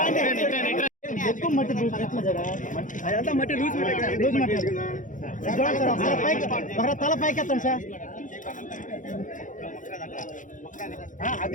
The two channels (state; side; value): late; right; 0.37 ms